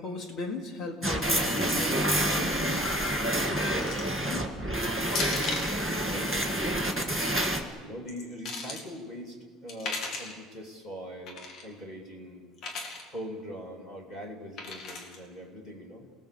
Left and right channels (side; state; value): both; normal; correlation 0.50